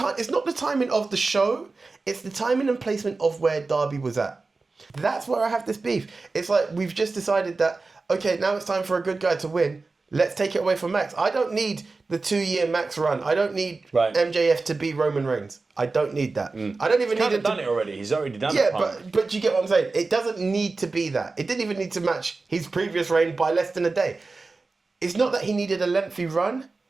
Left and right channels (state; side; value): quieter; left; 3.8 dB